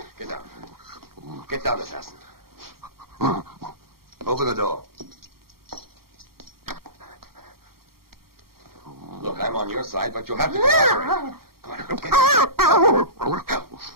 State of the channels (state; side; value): late; left; 0.94 ms